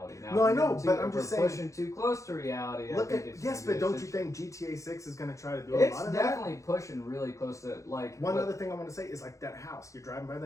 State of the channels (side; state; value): right; late; 0.15 ms